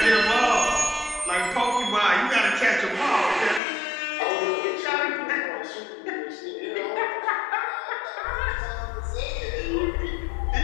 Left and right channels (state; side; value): drops out; right; at 3.6 s